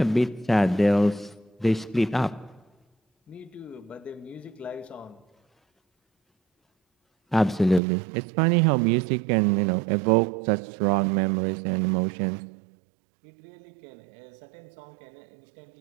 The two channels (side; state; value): left; drops out; at 7.8 s